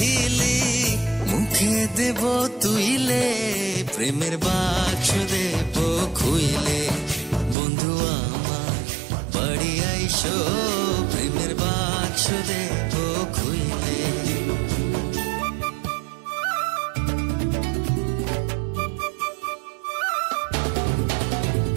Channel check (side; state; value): left; drops out; at 7.6 s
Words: মুখে দেব তুইলে, প্রেমের বাক্স দেব খুইলে। বন্ধু আমার বাড়ি আইসো, প্রেমের বাক্স দেব খুইলে।